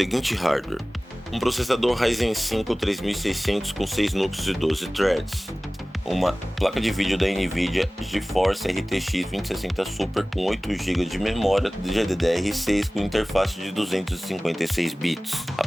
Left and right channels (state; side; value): normal; both; correlation 0.98